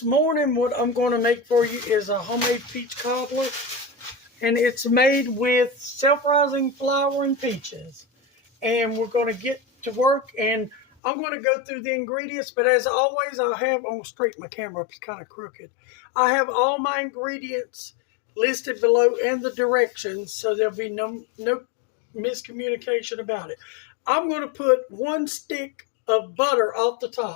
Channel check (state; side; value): drops out; right; at 10.9 s